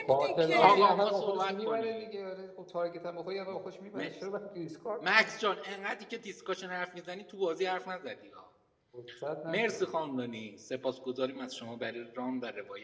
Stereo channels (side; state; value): both; identical; correlation 1.00